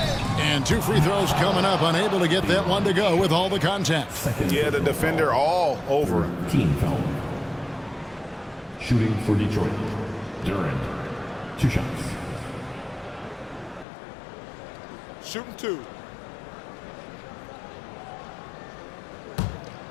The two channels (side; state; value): right; drops out; at 13.9 s